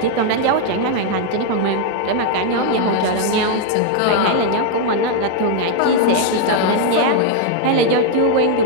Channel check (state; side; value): different; both; correlation 0.00